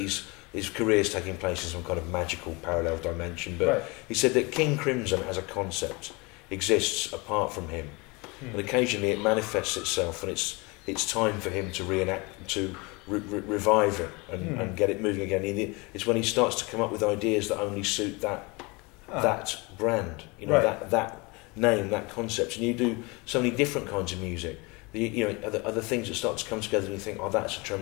career's taking place in some kind of magical parallel dimension. But he said that King Crimson as a concept exists apart from him, and occasionally it manifests itself, and it's time for him to revive it and get it moving again. It's when he starts to come up with ideas that only suit that brand, that name, that concept. And you do so many different kinds of music. Other things that start to come together, and you think, that's a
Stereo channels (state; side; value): quieter; right; 26.8 dB